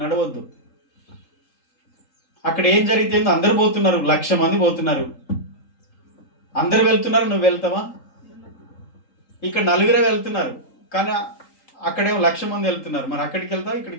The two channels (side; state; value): right; late; 3.8 ms